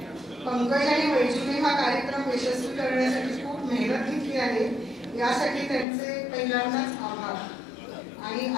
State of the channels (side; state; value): right; drops out; at 5.9 s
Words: पंकज आणि वैजूने हा कार्यक्रम यशस्वी करण्यासाठी खूप मेहनत घेतली आहे, यासाठी त्यांचे पहिल्यांदाच आभार आणि